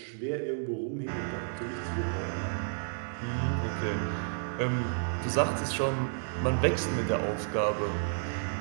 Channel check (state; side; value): silent; left; digital silence